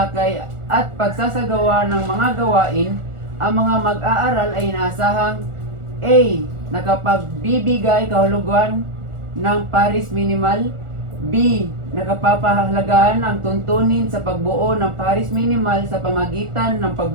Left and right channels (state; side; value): late; left; 1.4 ms